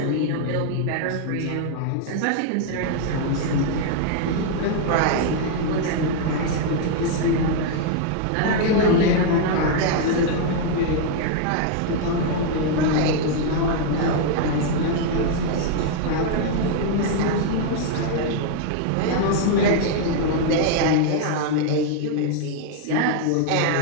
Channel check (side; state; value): both; different; correlation 0.00